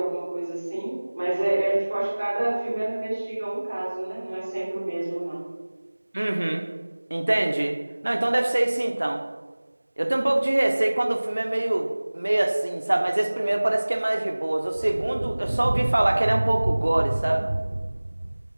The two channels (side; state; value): both; inverted; correlation -1.00